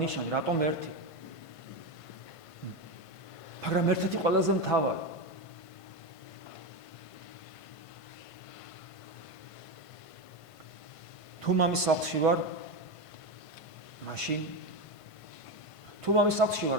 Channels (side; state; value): right; late; 1.5 ms